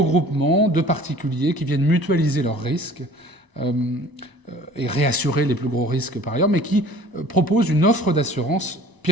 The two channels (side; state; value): left; late; 1.0 ms